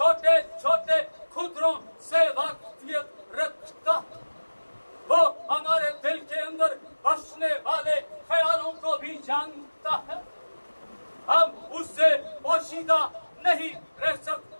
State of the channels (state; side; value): inverted; both; correlation -1.00